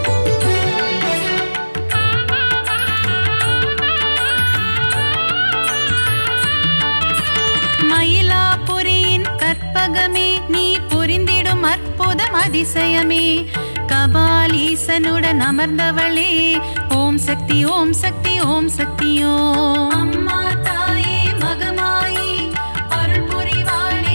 மயிலாபுரியின் கற்பகமே, நீ புரிந்திடும் அற்புதம் அதிசயமே, கபாலீசனுடன் அமர்ந்தவளே ஓம் சக்தி ஓம் சக்தி ஓம் சக்தி ஓம். அம்மா தாயே மகமாயி அருள்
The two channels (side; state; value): both; inverted; correlation -1.00